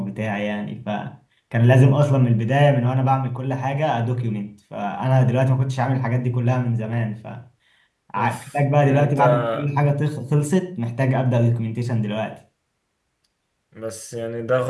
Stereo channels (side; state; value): both; identical; correlation 1.00